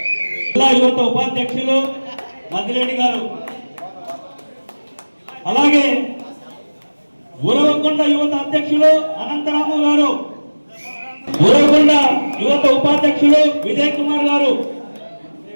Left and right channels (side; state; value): both; inverted; correlation -1.00